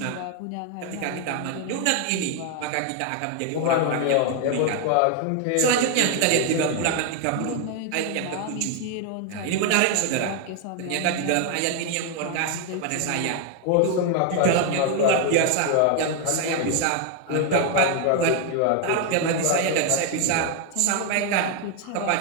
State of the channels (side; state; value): both; different; correlation 0.01